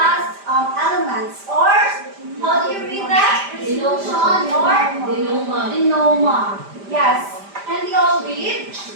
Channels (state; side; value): late; left; 5.0 ms